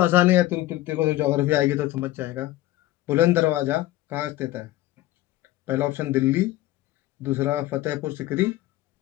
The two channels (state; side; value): quieter; right; 16.0 dB